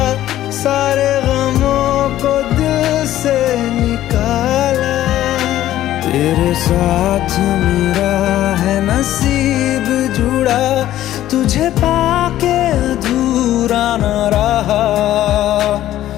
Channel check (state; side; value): quieter; right; 13.4 dB